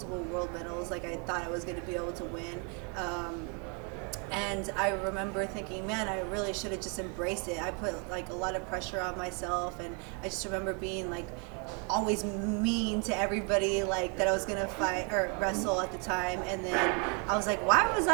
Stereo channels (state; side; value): quieter; left; 36.0 dB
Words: world medals like I thought I was going to be able to win. And I remember thinking, man, I really should have just embraced it. I put a lot of pressure on myself, and I just remember being always mean to everybody that I was gonna fight or wrestle at the time. And then I was like, why did